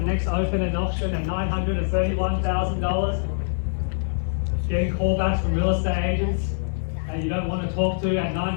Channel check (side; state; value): right; silent; digital silence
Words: next open and auction at $931,000? Getting callbacks from real estate agents that you don't want to talk to at